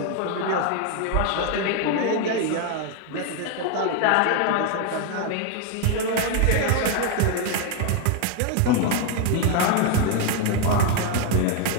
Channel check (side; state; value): both; different; correlation 0.01